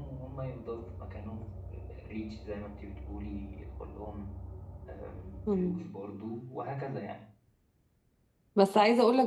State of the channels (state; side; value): identical; both; correlation 1.00